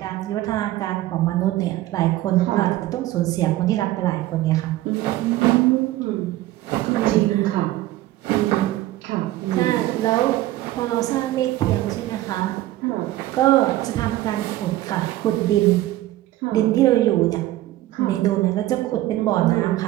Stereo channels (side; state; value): left; quieter; 15.7 dB